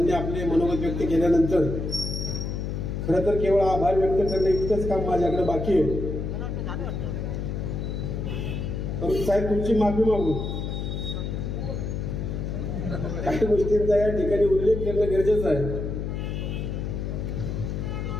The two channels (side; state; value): left; noise; hum, 3 dB below the sound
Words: आपले मनोगत व्यक्त केल्यानंतर खरं तर केवळ आभार व्यक्त करणे इतकंच काम माझ्याकडे बाकी आहे. परंतु साहेब तुमची माफी मागू, काही गोष्टींचा या ठिकाणी उल्लेख करणं गरजेचं आहे.